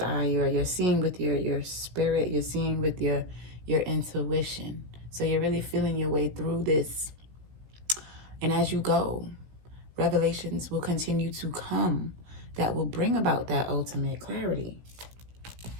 eye, or you're seeing with your spirit. You're seeing with your intuition. So you're really feeling your way through this. And as you go, revelations will continue to come that will bring about that ultimate clarity.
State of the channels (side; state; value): left; late; 17 ms